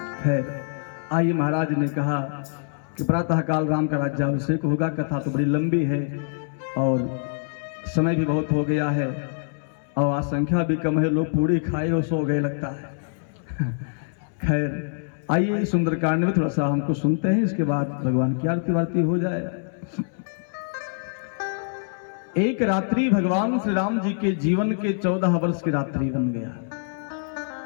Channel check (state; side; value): silent; right; 62 dB below the other